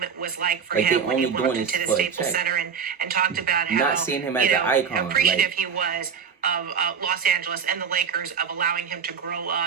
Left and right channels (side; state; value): left; quieter; 6.6 dB